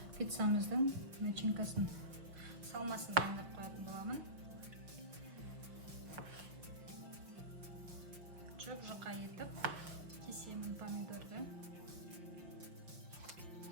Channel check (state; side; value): late; left; 5.6 ms